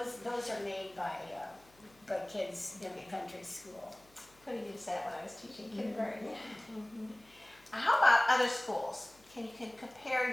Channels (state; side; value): noise; left; hum, 29 dB below the sound